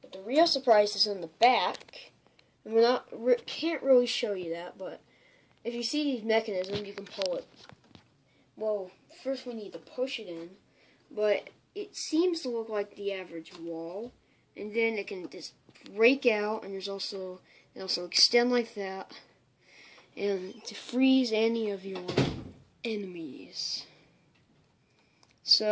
the real surprise is in the back, and can't really show you that, but if you see these mechanisms, you can pull it. Well, first we need to push it in, but it seems to look like the average wall, and then it can just break out, and it also extend like that, and to freeze any of your enemies.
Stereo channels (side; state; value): both; identical; correlation 1.00